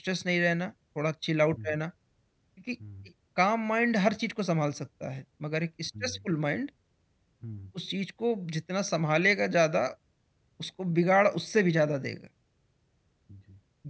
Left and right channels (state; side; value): identical; both; correlation 1.00